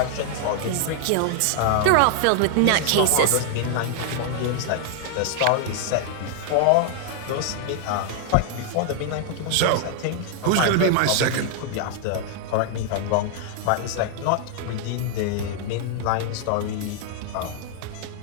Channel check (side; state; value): both; different; correlation 0.00